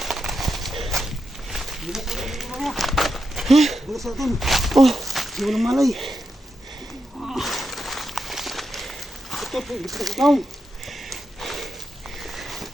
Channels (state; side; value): normal; both; correlation 0.86